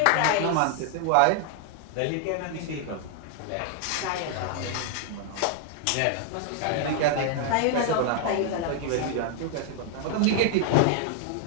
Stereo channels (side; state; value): both; different; correlation 0.00